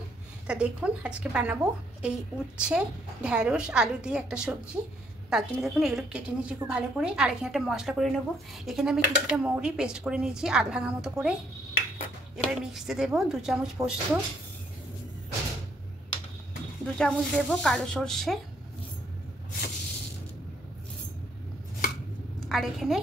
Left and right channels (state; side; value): normal; both; correlation 0.69